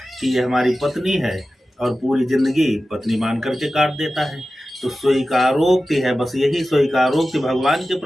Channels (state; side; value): normal; both; correlation 0.94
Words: कि ये हमारी पत्नी है, और पूरी जिंदगी पत्नी मान करके काट देता है। तो स्वीकारोक्ति है, बस यही स्वीकारोक्ति भगवान के